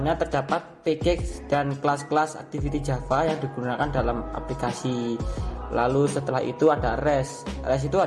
terdapat package dan kelas-kelas activity Java yang digunakan dalam aplikasi. Lalu setelah itu ada REST. REST itu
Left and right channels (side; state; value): both; identical; correlation 1.00